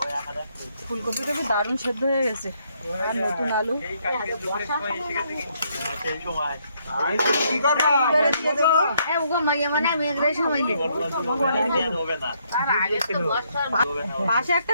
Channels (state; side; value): inverted; both; correlation -0.72